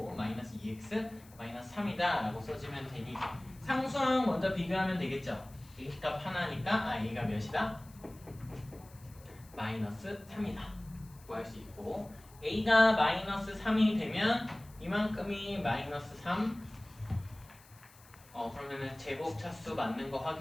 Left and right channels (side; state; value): left; noise; hiss, 24 dB below the sound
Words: 마이너스 2x 마이너스 3이다 라고 써주면 되니, 상수항 먼저 비교하면 되겠죠. a 값 하나니까 a가 몇이다? 마이너스 3이다 구할 수 있고, a가 마이너스 3이 되면 이만큼이 마이너스 3, 그러면은 제곱 차수 맞는 거